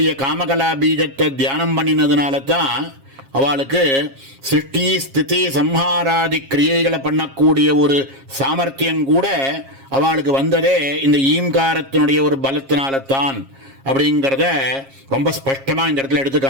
காமகலா பீஜத்தை தியானம் பண்ணினதுனால தான் அவளுக்கு சிருஷ்டி ஸ்திதி சம்ஹாராதி கிரியைகளை பண்ணக்கூடிய ஒரு சாமர்த்தியம் கூட அவளுக்கு வந்ததே இந்த ஈம்காரத்தினுடைய ஒரு பலத்தினால்தான் அப்படிங்கிறத ரொம்ப ஸ்பஷ்டமாக இந்த இடத்துல எடுத்து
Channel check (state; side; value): late; left; 7.4 ms